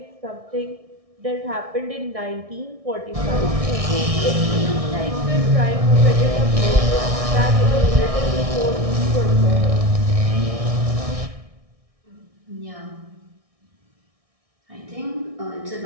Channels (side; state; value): left; late; 1.6 ms